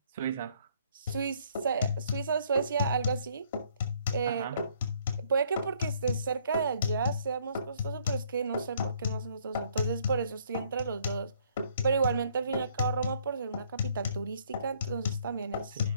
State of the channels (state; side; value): inverted; both; correlation -0.64